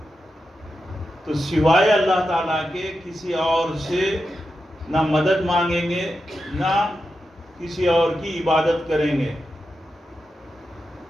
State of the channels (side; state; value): both; normal; correlation 0.89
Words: تو سوائے اللہ تعالیٰ کے کسی اور سے نہ مدد مانگیں گے نہ کسی اور کی عبادت کریں گے.